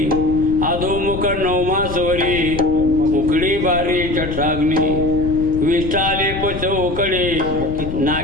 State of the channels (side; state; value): left; noise; rumble, 8 dB below the sound